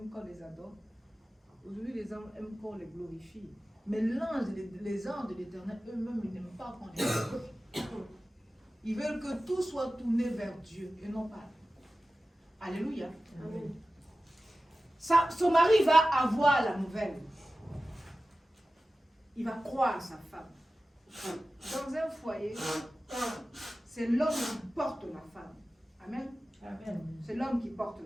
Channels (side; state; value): both; normal; correlation 0.95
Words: qu'on les adore. Aujourd'hui, les hommes aiment qu'on les glorifie. Mais les anges de l'Éternel, eux-mêmes, ils n'aiment pas qu'on les adore. Ils veulent que tout soit tourné vers Dieu et non pas. Alléluia. Amen. Son mari va avoir la nouvelle. Il va croire sa femme. Dans un foyer, c'est l'homme qui porte la femme. Amen. Amen. C'est l'homme qui porte